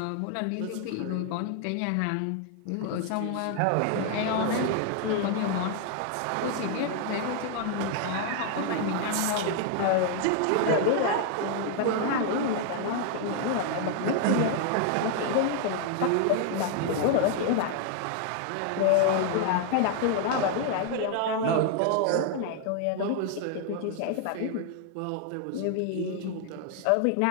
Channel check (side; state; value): both; different; correlation 0.00